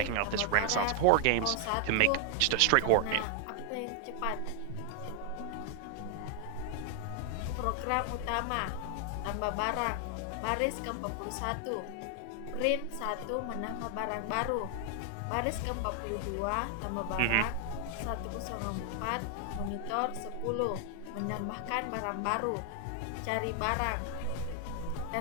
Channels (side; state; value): both; different; correlation 0.00